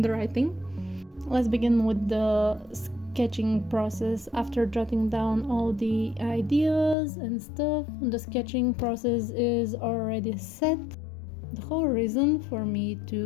Let's begin with the sketching process. After jotting down all the ideas and stuff, the sketching process is already set. The whole reason for me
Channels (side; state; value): right; drops out; at 7.0 s